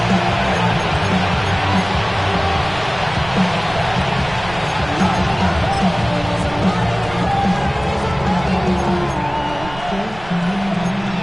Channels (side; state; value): right; noise; rumble, 16 dB below the sound